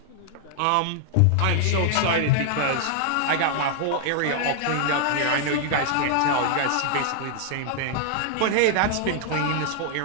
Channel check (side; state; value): both; different; correlation 0.00